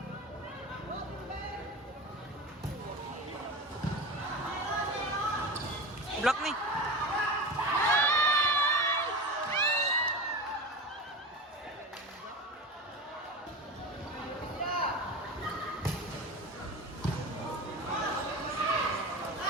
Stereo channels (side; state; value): both; normal; correlation 0.27